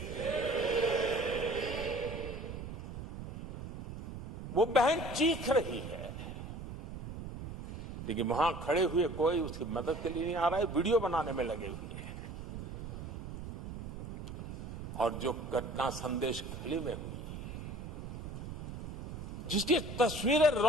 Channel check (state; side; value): noise; right; rumble, 8 dB below the sound